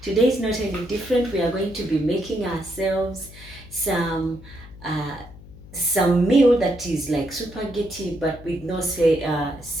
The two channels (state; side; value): noise; left; hum, 18 dB below the sound